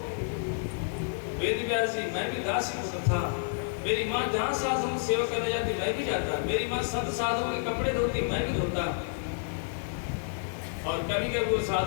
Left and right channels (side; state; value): right; silent; digital silence